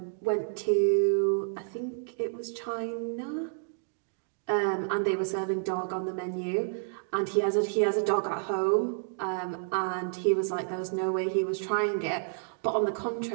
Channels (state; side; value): silent; left; digital silence